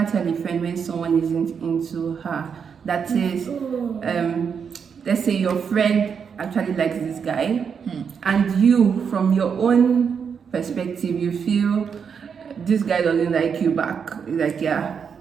tell a friend when someone isn't into her. That is, let's say your friend actually likes this guy, and you, from your own perspective, you feel this guy doesn't like you back. Like, yeah,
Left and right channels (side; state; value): left; quieter; 6.7 dB